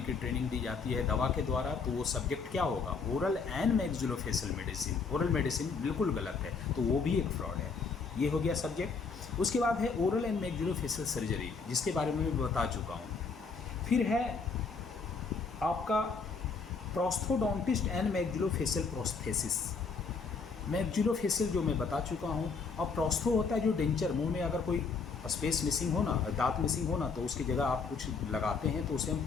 की ट्रेनिंग दी जाती है दवा के द्वारा। तो वो सब्जेक्ट क्या होगा, oral and maxillofacial medicine. Oral medicine बिल्कुल गलत है, तो वो भी एक फ्रॉड है। ये हो गया सब्जेक्ट। उसके बाद है ओरल एंड मैक्सिलोफेशियल सर्जरी, जिसके बारे में मैं बता चुका हूँ। फिर है आपका प्रोस्थोडोंटिस्ट एंड मैक्सिलोफेशियल प्रोस्थेसिस। मैक्सिलोफेशियल जो मैं बता चुका हूँ, और प्रोस्थो होता है जो डेंचर, मुंह में अगर कोई स्पेस मिसिंग हो ना, दांत मिसिंग हो ना, तो उसकी जगह आप कुछ लगाते हैं, तो उसे हम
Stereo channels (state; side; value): quieter; right; 4.9 dB